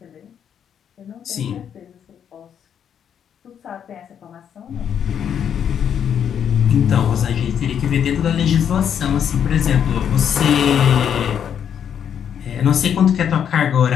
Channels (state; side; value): quieter; right; 8.5 dB